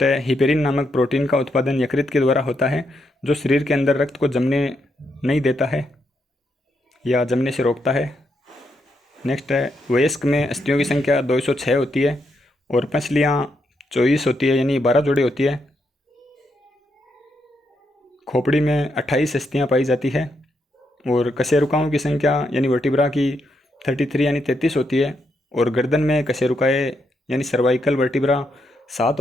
है हिपेरिन नामक प्रोटीन का उत्पादन यकृत के द्वारा होता है जो शरीर के अंदर रक्त को जमने नहीं देता है या जमने से रोकता है। नेक्स्ट है वयस्क में अस्थियों की संख्या 206 होती है और पसलियाँ 24 होती है यानी 12 जोड़ी होती है। खोपड़ी में 28 अस्थियाँ पाई जाती है और कशेरुकाओं की संख्या यानी वर्टिब्रा की 33 यानी 33 होती है और गर्दन में कशेरुकाएँ यानी सर्वाइकल वर्टिब्रा 7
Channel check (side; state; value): both; normal; correlation 0.80